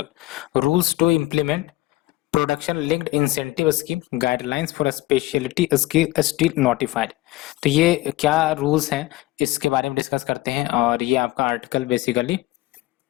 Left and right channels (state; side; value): quieter; right; 18.3 dB